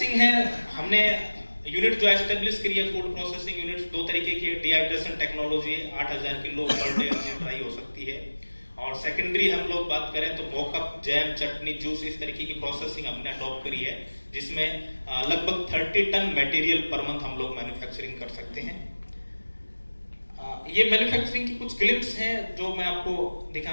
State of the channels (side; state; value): both; inverted; correlation -1.00